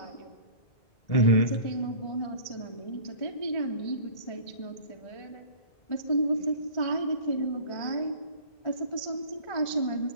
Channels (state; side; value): late; right; 1.4 ms